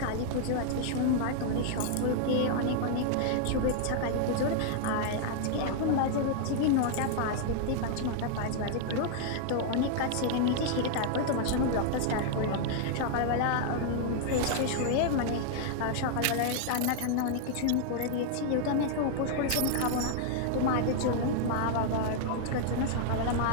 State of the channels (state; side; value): different; both; correlation 0.00